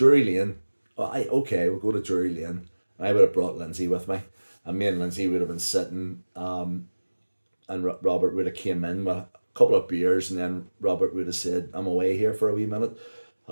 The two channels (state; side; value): inverted; both; correlation -1.00